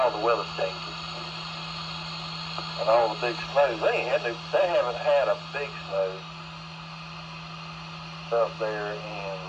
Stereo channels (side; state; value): both; identical; correlation 1.00